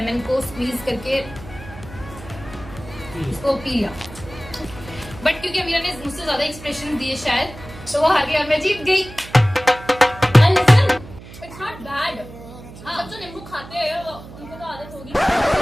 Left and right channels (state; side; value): noise; right; hum, 16 dB below the sound